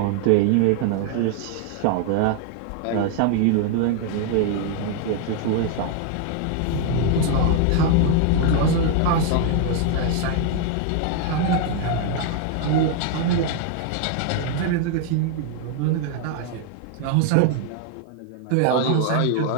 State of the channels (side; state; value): both; different; correlation 0.00